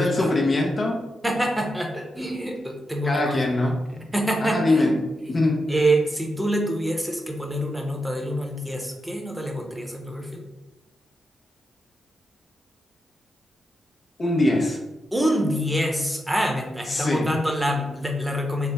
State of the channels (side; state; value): both; normal; correlation 0.86